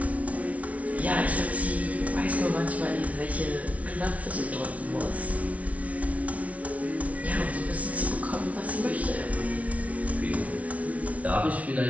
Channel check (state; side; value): late; left; 0.067 ms